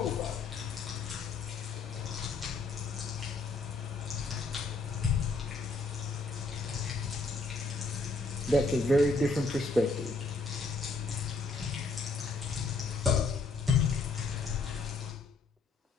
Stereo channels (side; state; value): right; quieter; 3.7 dB